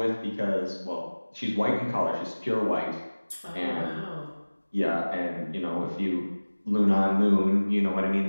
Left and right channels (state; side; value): inverted; both; correlation -1.00